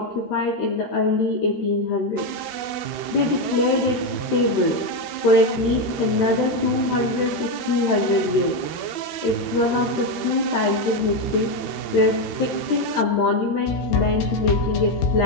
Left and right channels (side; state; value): right; late; 13 ms